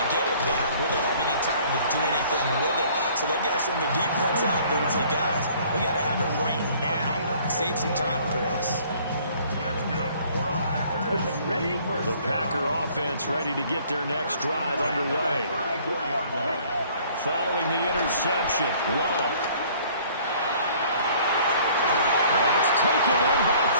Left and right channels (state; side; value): inverted; both; correlation -0.56